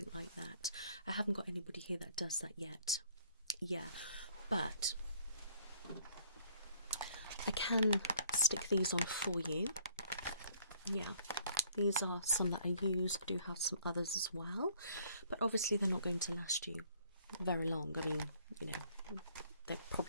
like that. I haven't got anybody here that does that yet. Yeah, but I can stick these on for you. Yeah, these are some that I use. I do have some others as well, but obviously they're not going to last you very long. I mean, you know, they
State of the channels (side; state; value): both; inverted; correlation -0.60